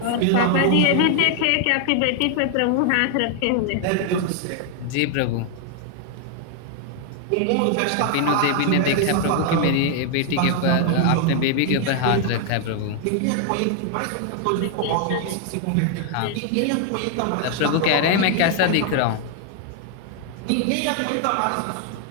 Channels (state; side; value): different; both; correlation 0.00